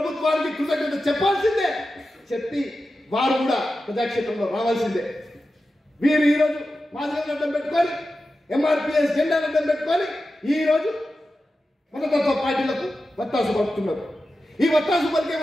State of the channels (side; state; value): both; normal; correlation 0.92